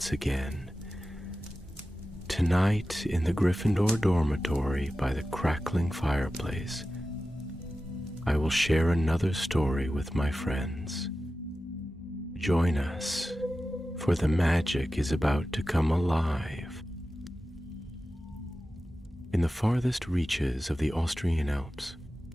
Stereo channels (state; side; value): normal; both; correlation 0.94